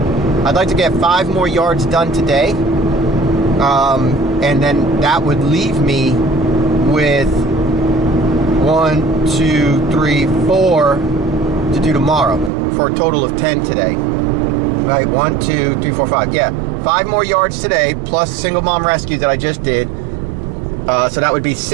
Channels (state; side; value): drops out; left; at 12.5 s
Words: 5 more yards done today. And then that would leave me with 1, 2, 3, 4 to do tomorrow, for a total of 10 today. Right, 1, 2, 3, 4, 5. Yeah, 5 more yards today, plus Single Mom Rescue that I just did. So that would be